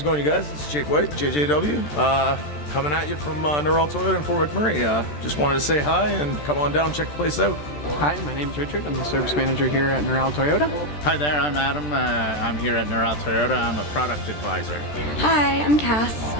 it going, you guys? It's Jake White, JJW, coming at you from Realtor Toyota in Fort McMurray. Just wanted to say hi and come on down, check the place out. Hi, my name's Richard. I'm the service manager here at Realtor Toyota. Hi there, I'm Adam. I'm here at Realtor Toyota. I'm a product advisor. Hi, I'm Cass.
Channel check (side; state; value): right; late; 13 ms